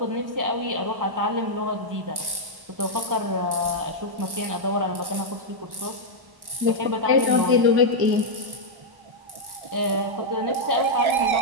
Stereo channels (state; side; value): late; left; 1.1 ms